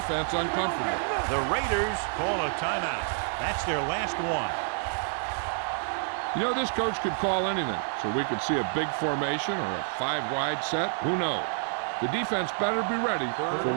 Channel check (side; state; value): left; silent; 59 dB below the other